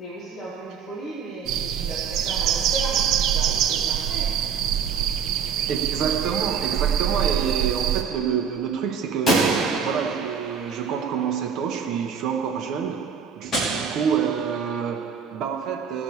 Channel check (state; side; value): quieter; left; 7.0 dB